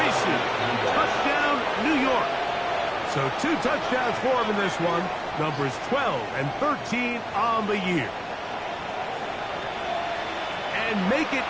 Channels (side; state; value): both; identical; correlation 1.00